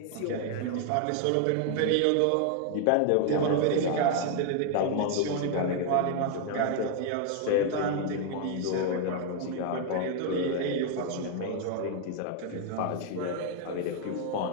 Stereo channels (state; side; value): different; both; correlation 0.00